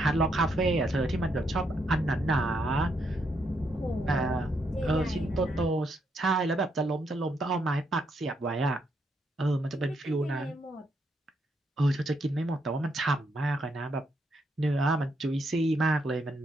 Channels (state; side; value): normal; both; correlation 0.77